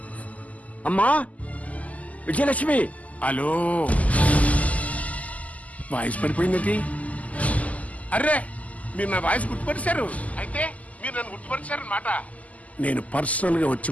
అమ్మా విజయలక్ష్మి. హలో, వాయిస్ పడిపోయింది. అర్రే, మీరు నా వాయిస్ గుర్తుపరిచారు. అయితే మీరు నన్ను గుర్తుపరిచారన్నమాట. నేను పర్సనల్ గా వచ్చి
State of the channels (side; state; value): right; late; 0.073 ms